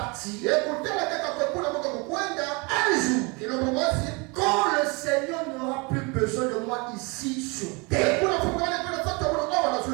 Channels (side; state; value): left; quieter; 29.2 dB